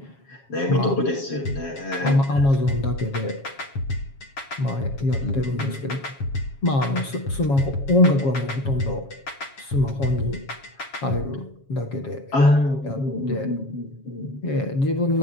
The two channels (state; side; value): late; right; 7.3 ms